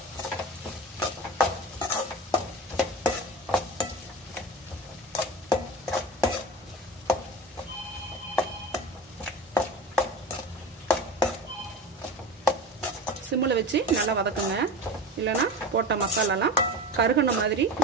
சிம்மில் வச்சு நல்லா வதக்குங்க. இல்லைன்னா போட்ட மசாலாலாம் கருகுன மாதிரி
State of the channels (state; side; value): normal; both; correlation 0.29